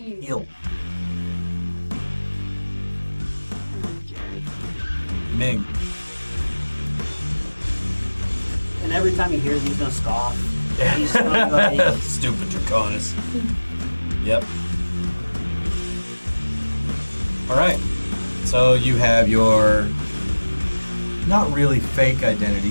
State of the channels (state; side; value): inverted; both; correlation -1.00